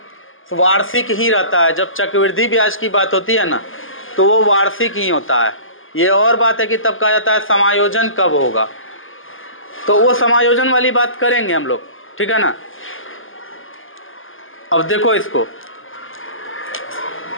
वार्षिक ही रहता है। जब चक्रवृद्धि ब्याज की बात होती है ना, तो वो वार्षिक ही होता है। ये और बात है कि तब कहा जाता है समायोजन कब होगा, तो वो समायोजन वाली बात करेंगे हम लोग, ठीक है ना। अब देखो, इसको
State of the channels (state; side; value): late; right; 0.59 ms